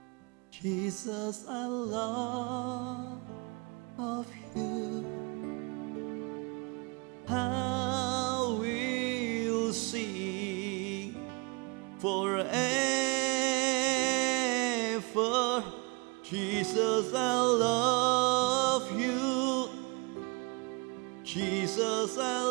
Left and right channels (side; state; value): left; quieter; 30.1 dB